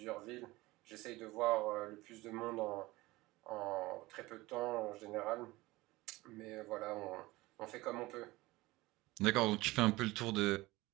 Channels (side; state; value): left; quieter; 20.1 dB